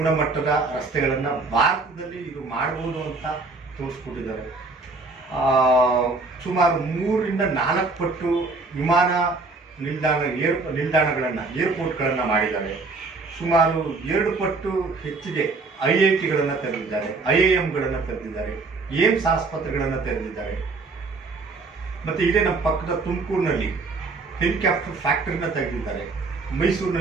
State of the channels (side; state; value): left; quieter; 3.8 dB